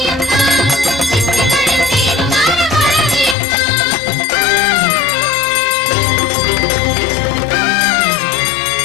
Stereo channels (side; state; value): right; drops out; at 3.4 s